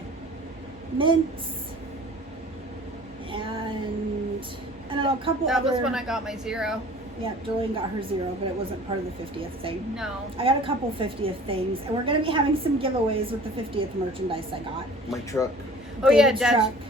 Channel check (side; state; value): both; normal; correlation 0.46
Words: Mints and I don't know, a couple That other. was when I got my 0. Yeah, Jolene got her 0, but it wasn't part of the 50th thing. No. I got a couple 50th things, and we're going to be having some giveaways with the 50th merchandise I got. My truck. Oh yeah, David's truck,